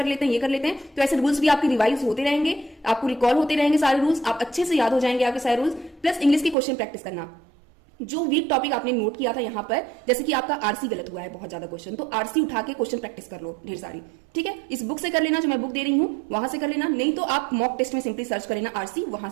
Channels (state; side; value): drops out; left; at 6.6 s